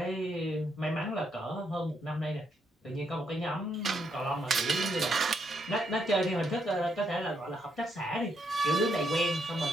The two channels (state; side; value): normal; both; correlation 0.76